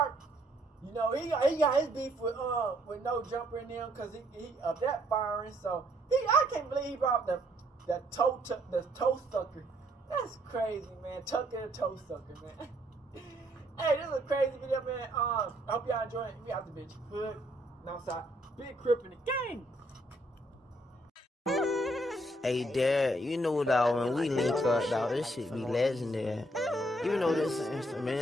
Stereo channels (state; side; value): normal; both; correlation 0.69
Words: You know, he got his beef with Nojumper and them because he of that firing. So I can't believe he brought the toe sucker. That's crazy, man. Tucker the toe sucker, man. Hey, this is a crazy video, man. I hope y'all enjoy it. We out the bitch. Hood, outside, big crip in the game. Hey, Dad, you know, dog, when we link up, dog, this shit be legendary. You know this